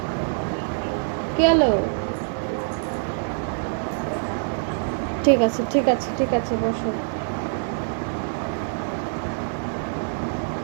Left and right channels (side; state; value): left; silent; 62 dB below the other